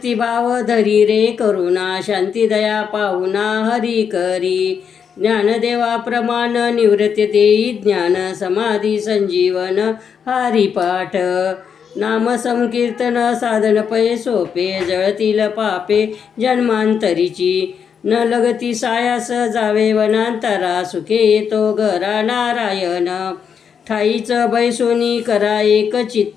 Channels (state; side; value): quieter; right; 7.1 dB